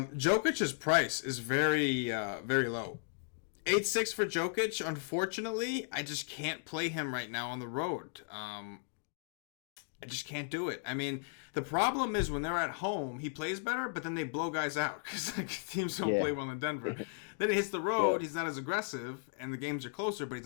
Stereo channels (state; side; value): silent; right; digital silence